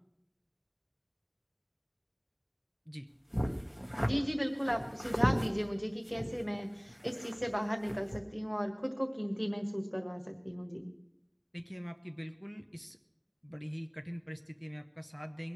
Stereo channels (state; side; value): identical; both; correlation 1.00